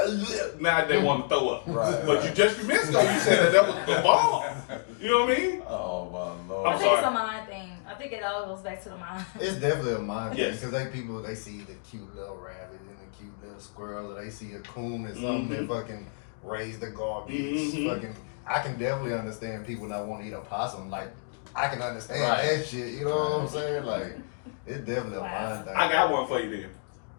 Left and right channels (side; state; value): right; silent; digital silence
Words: Now they want to throw up. Right. But you just missed though. You said that was the bomb. You know what I mean? Oh my lord. I I'm think it's sorry. a mind thing. I think it all goes back to the mind. It's definitely a mind thing Yes. because they see the cute little rabbit and the cute little squirrel, or they see a coon or something that fucking raise the garbage. Fucking, I can definitely understand people that want to eat a possum. Like, I can understand Right. that shit. You know what I'm saying? Like, it's definitely a mind thing. I got one for you then.